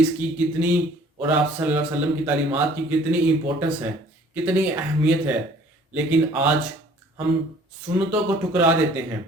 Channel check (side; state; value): both; normal; correlation 0.54